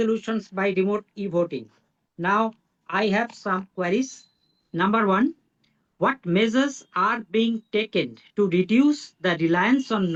by remote e-voting. Now, I have some queries. Number one, what measures are being taken to reduce the reliance on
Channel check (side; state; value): both; identical; correlation 1.00